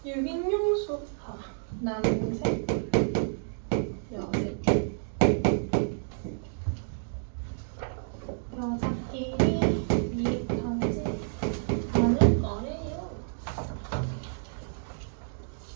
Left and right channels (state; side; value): silent; left; digital silence